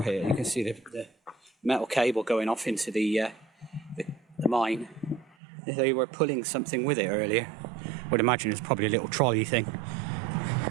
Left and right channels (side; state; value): left; drops out; at 5.4 s